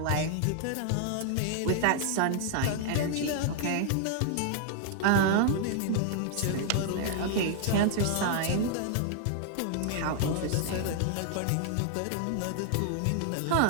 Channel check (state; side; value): different; both; correlation 0.00